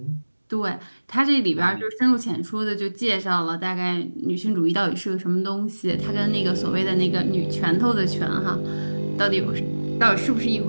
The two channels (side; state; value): both; inverted; correlation -1.00